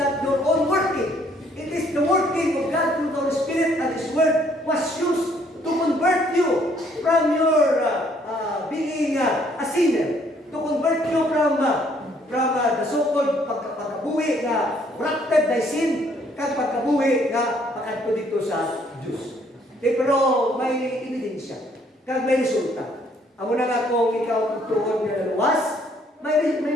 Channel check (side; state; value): both; normal; correlation 0.65